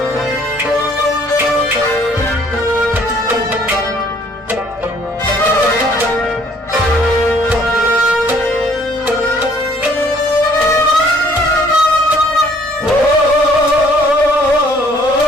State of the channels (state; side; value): normal; both; correlation 0.60